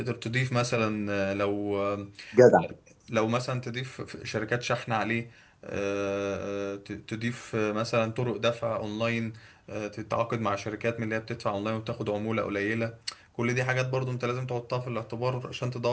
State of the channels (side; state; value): both; identical; correlation 1.00